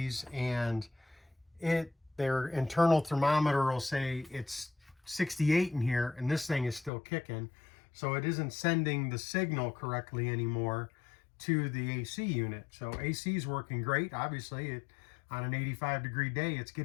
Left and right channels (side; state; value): right; drops out; at 6.9 s